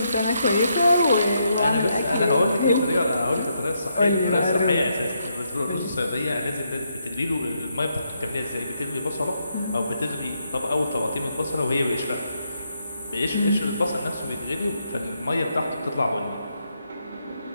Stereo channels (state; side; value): inverted; both; correlation -0.79